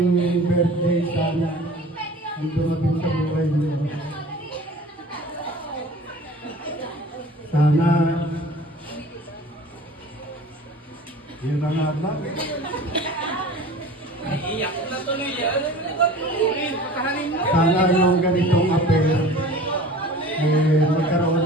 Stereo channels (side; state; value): both; normal; correlation 0.42